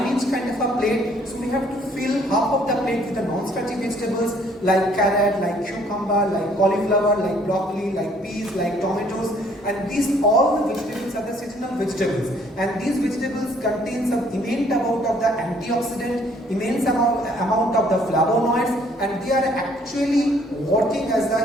kind of a plate. So we have to fill half of the plate with the non-starchy vegetables like carrot, like cucumber, like cauliflower, like broccoli, like peas, like tomatoes. And these all the vegetables are the seasonal vegetables, and these vegetables contain some immense amount of the antioxidant, immense amount of the flavonoids, and they are actually working as the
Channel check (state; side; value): normal; both; correlation 0.62